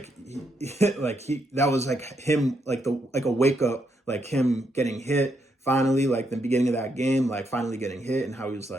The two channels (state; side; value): normal; both; correlation 0.78